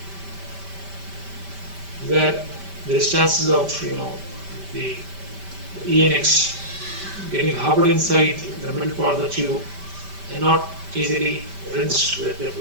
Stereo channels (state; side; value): late; left; 5.1 ms